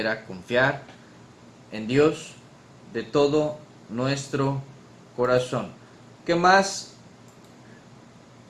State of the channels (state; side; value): identical; both; correlation 1.00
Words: a confiar en Dios de todo nuestro corazón. ¿Qué más?